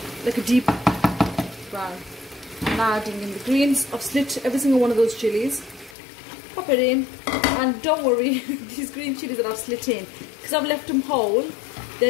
like a deep brown. I'm now adding in the greens. I've slit every single one of those chilies. Pop it in, and don't worry, these green chilies that I've slit in, because I've left them whole,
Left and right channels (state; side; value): drops out; right; at 6.0 s